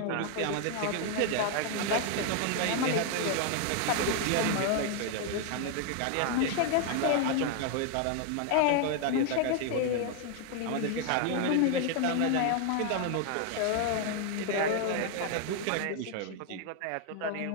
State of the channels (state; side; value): different; both; correlation 0.00